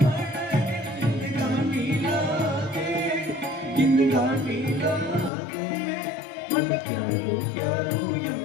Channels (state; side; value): drops out; right; at 5.3 s